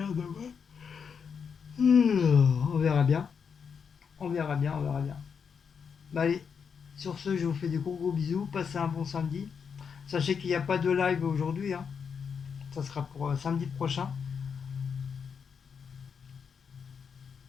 demain. On verra bien. On verra bien, on verra bien. Bah allez, sur ce, je vous fais des gros bisous. Passez un bon samedi. Sachez qu'il n'y a pas de live aujourd'hui, hein. Ça sera pour samedi prochain.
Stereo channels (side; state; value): right; quieter; 6.5 dB